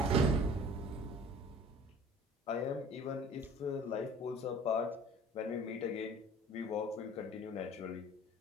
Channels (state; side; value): normal; both; correlation 0.47